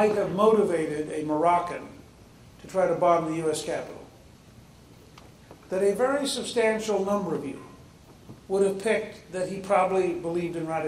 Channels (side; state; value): both; identical; correlation 1.00